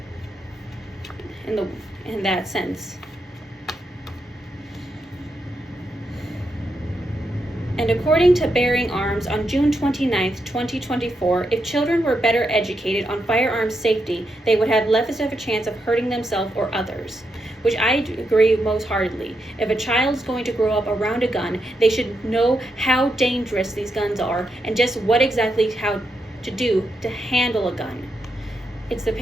in that sense. And according to Bearing Arms on June 29th, 2024, if children were better educated on firearms safety, they would have less of a chance of hurting themselves or others, which I agree most heartedly. If a child's going to grow up around a gun, they should know how dangerous these guns are and just what exactly how to do to handle a gun. It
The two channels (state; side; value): normal; both; correlation 0.83